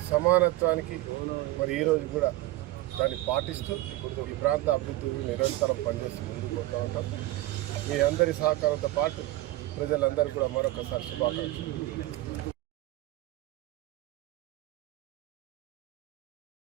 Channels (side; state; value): left; quieter; 17.3 dB